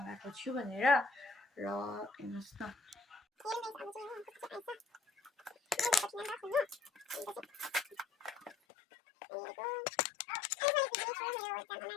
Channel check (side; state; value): right; drops out; at 8.6 s